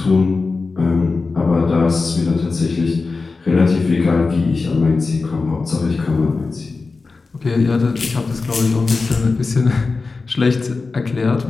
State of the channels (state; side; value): quieter; right; 4.0 dB